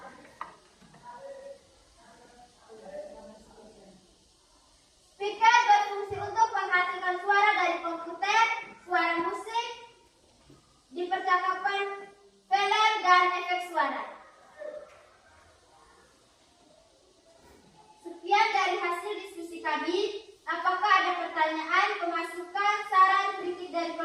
Speaker berfungsi untuk menghasilkan suara dari komputer, suara musik, di percakapan, film, dan efek suara. Sekian dari hasil diskusi kami. Apakah ada pertanyaan, pemasukan, saran, kritik dari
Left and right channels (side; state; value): both; identical; correlation 1.00